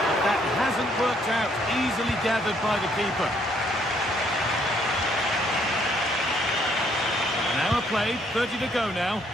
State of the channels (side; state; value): both; normal; correlation 0.67